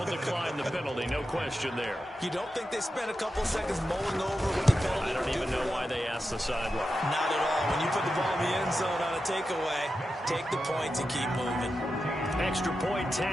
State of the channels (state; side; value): normal; both; correlation 0.90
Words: decline the penalty. No question there. You don't think they spent a couple seconds mulling over what the penalty? I don't even know why they asked the sideline. Not at all. When you put the ball in the end zone on a takeaway, take the points and keep moving. Extra point